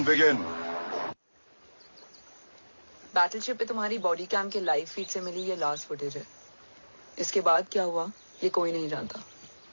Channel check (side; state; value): both; inverted; correlation -1.00